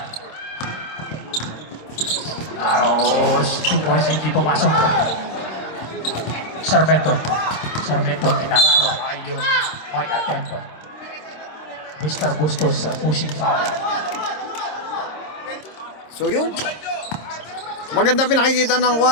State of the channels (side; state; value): right; late; 26 ms